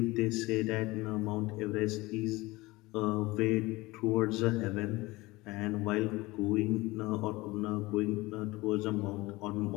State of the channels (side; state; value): right; quieter; 21.1 dB